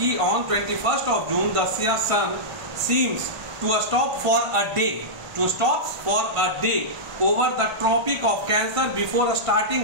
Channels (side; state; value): left; late; 1.5 ms